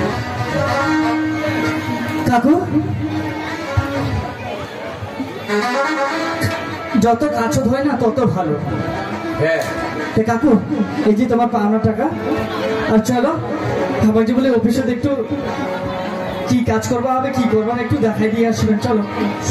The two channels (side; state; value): both; identical; correlation 1.00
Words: কাকু যত কাছে হয় না তত ভালো। হ্যাঁ কাকু এই যে তোমার পাওনা টাকা, আর চলো আমার যে বলে অফিসে একটু কি কাজ করবা হবে কি করবা একটু দেখাই দিয়ে আসবেন। চলো